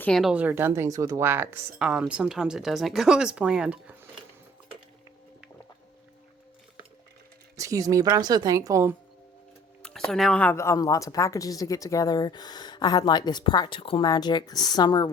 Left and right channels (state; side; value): normal; both; correlation 0.54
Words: or done things with wax, sometimes it doesn't go as planned. Excuse me, but I'm so thankful. So now I have lots of packages to get together. I had like this practical magic summer